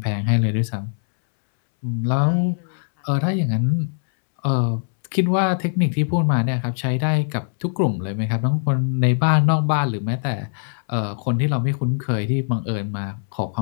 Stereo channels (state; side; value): silent; right; 65 dB below the other